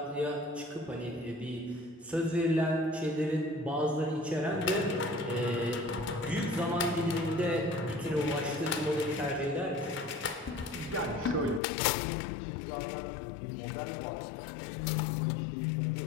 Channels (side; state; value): right; drops out; at 11.6 s